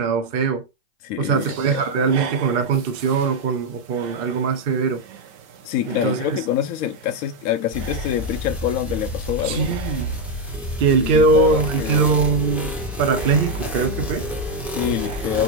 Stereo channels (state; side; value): normal; both; correlation 0.03